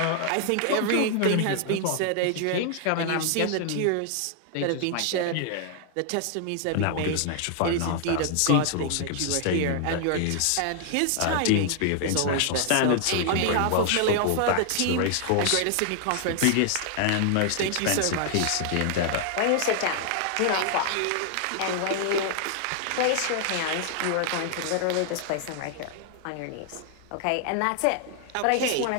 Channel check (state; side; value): different; both; correlation 0.00